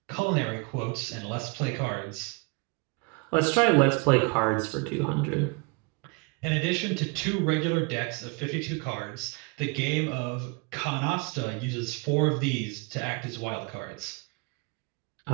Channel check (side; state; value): left; quieter; 29.9 dB